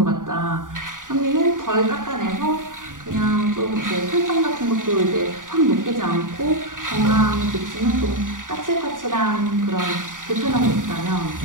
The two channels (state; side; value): late; left; 0.88 ms